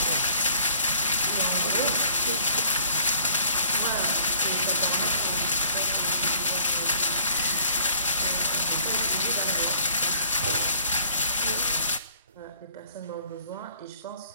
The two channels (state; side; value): inverted; both; correlation -0.55